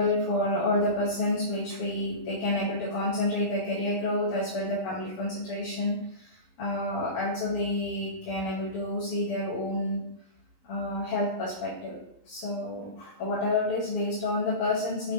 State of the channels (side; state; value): right; late; 11 ms